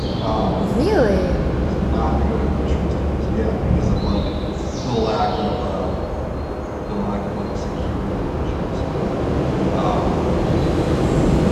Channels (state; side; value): identical; both; correlation 1.00